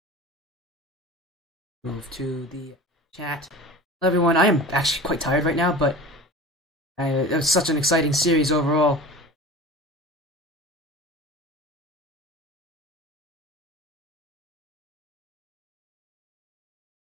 Move to the chat. Hello everyone, I am actually quite tired right now, but it was such an exciting series overall.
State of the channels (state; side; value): normal; both; correlation 0.36